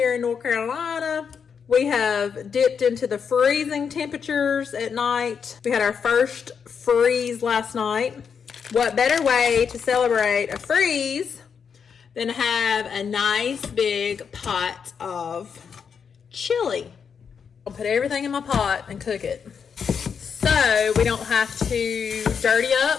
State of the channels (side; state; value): right; quieter; 6.6 dB